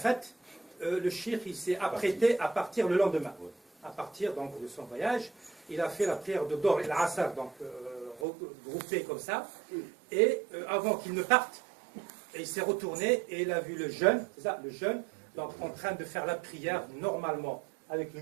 le cheikh il s'est apprêté à partir le lendemain. À partir donc, de son voyage, il a fait la prière de Dor et l'Asr, donc regroupée comme ça. Et avant qu'il ne parte, il s'est retourné et il a vu le jeune, c'est ça, le jeune, donc en train de faire la prière normalement avec le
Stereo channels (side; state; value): left; drops out; at 8.2 s